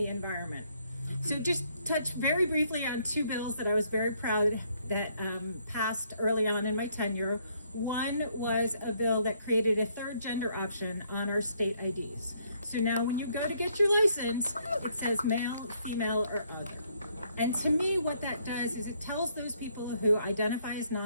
environment. So just touch very briefly on two bills that I was very proud that passed early on in my tenure. One was a bill that created a third gender option on our state IDs. So now when you go to get your license, it says male, female, or other. And to me, what that does is it tells those people who identify as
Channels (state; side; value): inverted; both; correlation -0.69